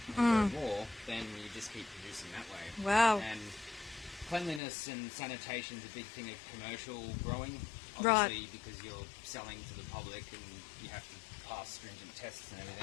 and grow more, then you just keep producing that way. Wow. And cleanliness and sanitation is a big thing of commercial growing, Right. obviously, because you're selling to the public and you have to pass stringent tests and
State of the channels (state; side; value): drops out; right; at 4.6 s